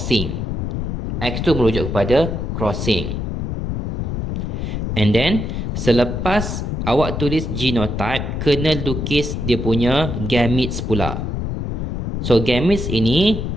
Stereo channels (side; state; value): left; noise; rumble, 2 dB below the sound